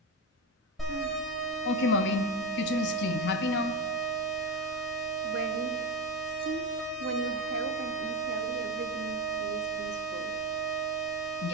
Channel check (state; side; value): normal; both; correlation 0.18